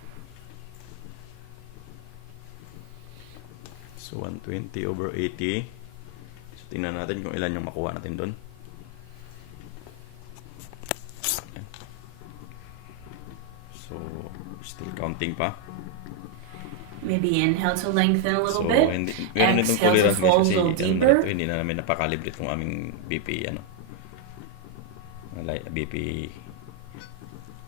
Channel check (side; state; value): both; different; correlation 0.01